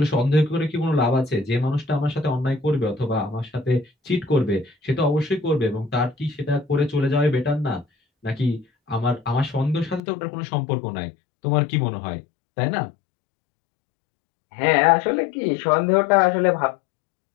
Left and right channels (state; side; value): drops out; right; at 10.0 s